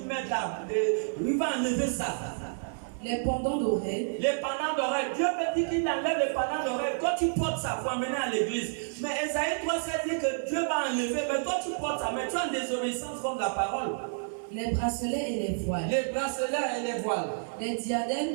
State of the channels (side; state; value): left; silent; 58 dB below the other